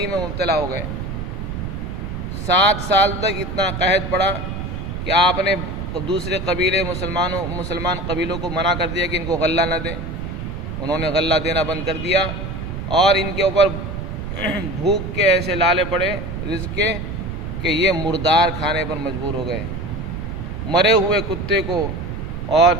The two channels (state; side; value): noise; right; rumble, 6 dB below the sound